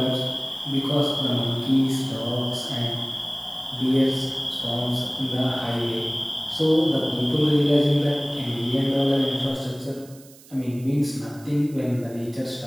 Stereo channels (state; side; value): noise; right; hiss, 23 dB below the sound